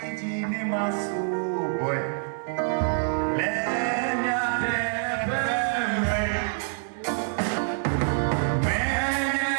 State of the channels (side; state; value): left; silent; digital silence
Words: idine masu boy. Lenya